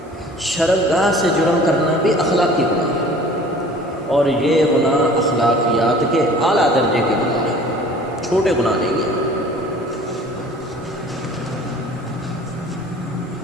شرمگاہ سے جرم کرنا بھی اخلاقی گناہ ہے، اور یہ گناہ اخلاقیات کے اعلیٰ درجے کے گناہ ہیں، چھوٹے گناہ نہیں ہیں۔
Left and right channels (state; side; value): normal; both; correlation 0.48